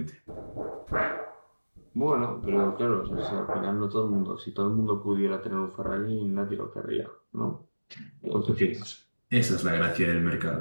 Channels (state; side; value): inverted; both; correlation -1.00